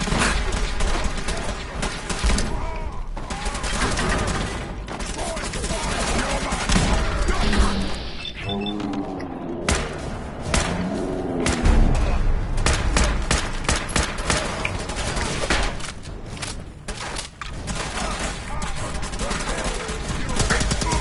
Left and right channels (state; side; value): identical; both; correlation 1.00